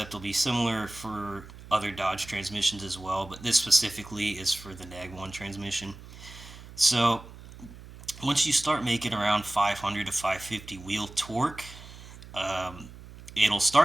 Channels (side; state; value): right; noise; hum, 17 dB below the sound